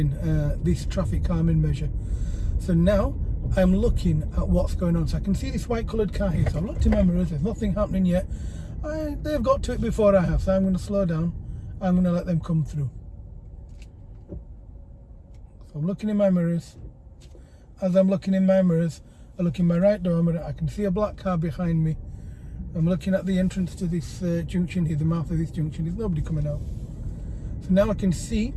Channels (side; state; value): both; identical; correlation 1.00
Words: this traffic calming measure. So now I'm looking at what's going on. So I can see this white coloured car here. So I've looked in my mirrors, there's nothing happening yet. They've got to it before I have, so I'm going to slow down. I'm going to let them come through. So I'm looking in my mirrors. As I'm looking in my mirrors, I look in my right door mirror. I can see a black car behind me. I'm looking at the entrance to this junction here, the mouth of this junction. There's nobody coming out. So now I can see